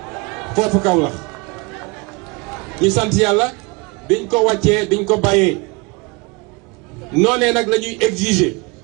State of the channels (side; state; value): left; quieter; 27.4 dB